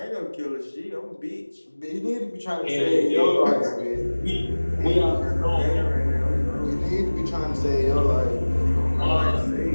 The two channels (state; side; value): inverted; both; correlation -1.00